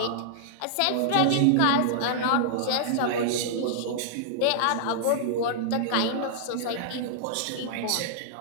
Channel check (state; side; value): different; both; correlation -0.01